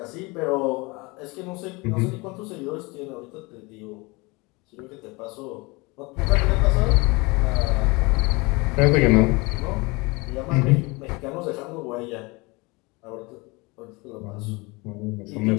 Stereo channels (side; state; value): right; quieter; 25.7 dB